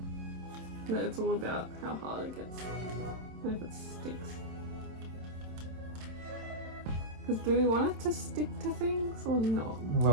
But it's all about how hard it gets and if it sticks. Because do we want it to stick to things or not?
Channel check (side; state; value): left; late; 27 ms